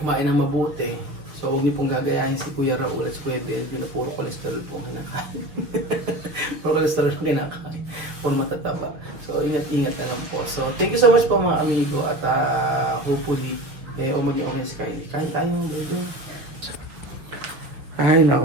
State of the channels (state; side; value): late; left; 6.2 ms